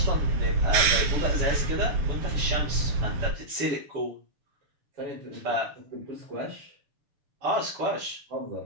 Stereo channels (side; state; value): left; late; 6.9 ms